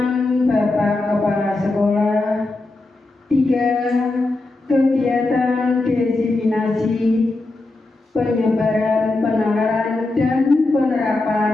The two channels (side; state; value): right; quieter; 3.1 dB